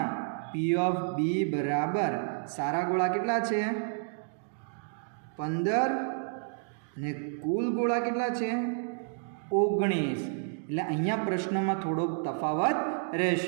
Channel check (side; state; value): left; silent; digital silence